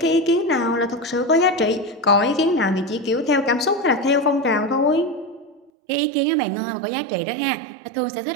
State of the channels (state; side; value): drops out; left; at 5.7 s